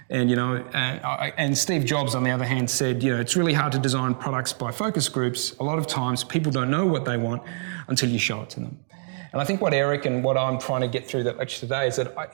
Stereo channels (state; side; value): silent; left; 62 dB below the other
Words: And, and Steve Jobs, on the other hand, said, it's really hard to design products by focus groups. A lot of times people don't know what they want until you show it to them. And I think what Eric and what I'm trying to get through that lecture today is that